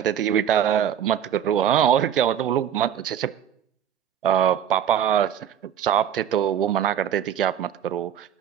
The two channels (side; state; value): left; quieter; 9.6 dB